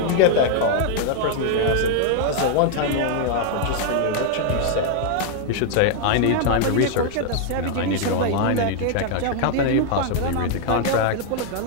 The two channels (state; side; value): different; both; correlation 0.00